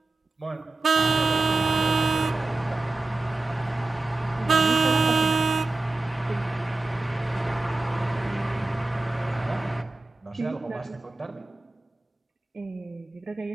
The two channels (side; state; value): left; quieter; 3.1 dB